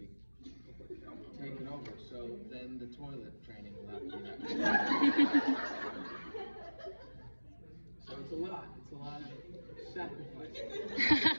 taken over. So then the toilet training will have to be that. So it's a lot of sacrifice.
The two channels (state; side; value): inverted; both; correlation -1.00